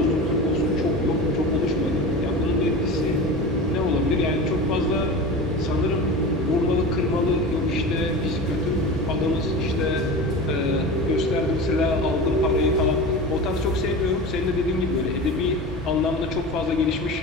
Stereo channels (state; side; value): normal; both; correlation 0.30